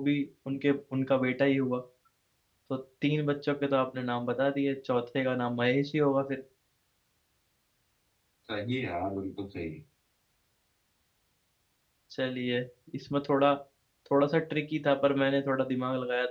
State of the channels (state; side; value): identical; both; correlation 1.00